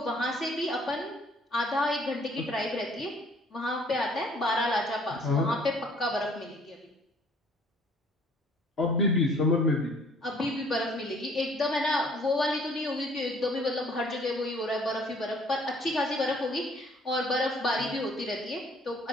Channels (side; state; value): both; normal; correlation 0.58